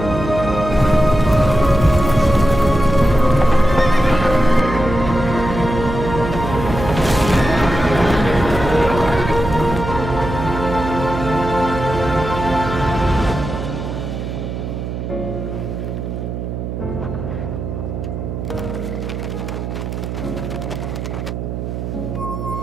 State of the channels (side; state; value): right; noise; hum, 5 dB below the sound